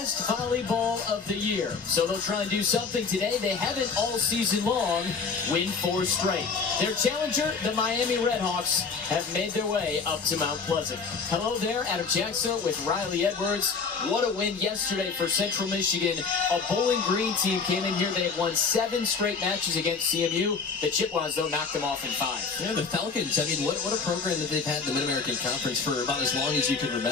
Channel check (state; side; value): quieter; right; 5.1 dB